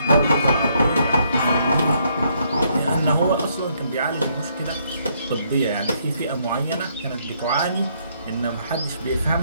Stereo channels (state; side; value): inverted; both; correlation -0.71